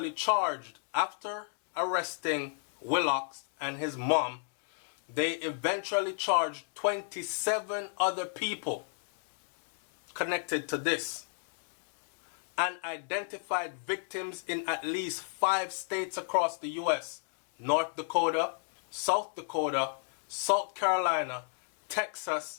charged, after arresting Willox and his mom, they eventually charged 27 other people connected to this, and identified victims in at least 5 states across the U.S. North Dakota, South Dakota, South Carolina,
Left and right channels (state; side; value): silent; right; digital silence